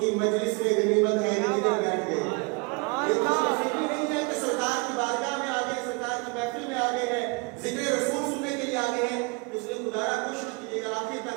کی مجلس میں غنیمت ہے کہ کدھر بیٹھ گئے۔ یہ خوش نصیبی نہیں ہے کہ سرکار کی بارگاہ میں آگے، سرکار کی محفل میں آگے ہیں، ذکر رسول سننے کے لیے آگے ہیں، اس لیے خدا را کوشش کیجیے گا آخر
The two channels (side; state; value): left; quieter; 30.9 dB